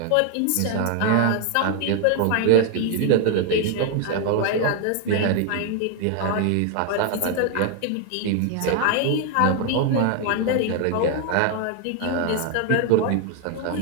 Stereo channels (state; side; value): different; both; correlation 0.01